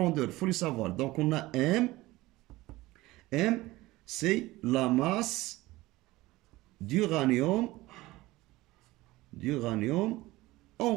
il faut les savoir. Donc, on a M. M, c'est la masse d'uranium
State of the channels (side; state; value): left; quieter; 19.0 dB